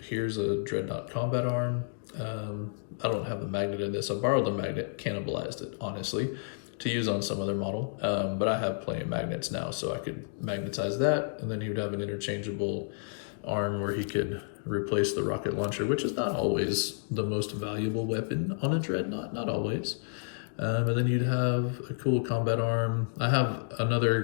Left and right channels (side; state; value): right; silent; digital silence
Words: here's a Dreadnought combat arm. I don't have the magnet in this. I borrowed the magnet, cannibalized it, honestly. to use on some other model, but I have plenty of magnets now, so I could magnetize that, and then he would have an interchangeable arm where he could replace the rocket launcher, which is not always the most valuable weapon on a dreadnought, not always. And then you'd have a cool combat arm. I have another